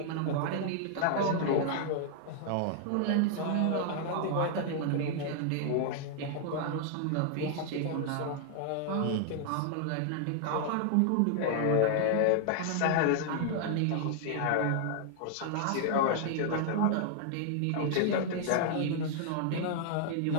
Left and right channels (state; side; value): different; both; correlation -0.01